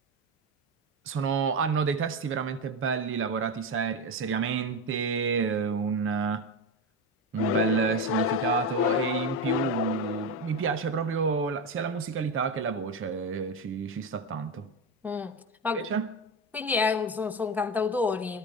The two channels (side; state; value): both; normal; correlation 0.16